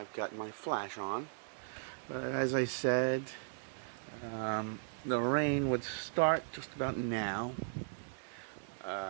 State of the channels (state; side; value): silent; left; 53 dB below the other